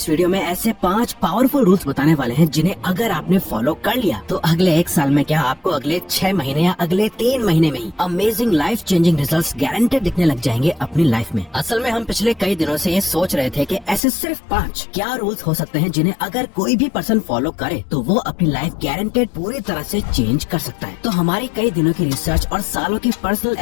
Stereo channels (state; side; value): drops out; right; at 14.0 s